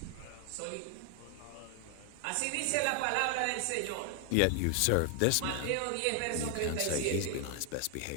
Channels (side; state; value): both; different; correlation 0.00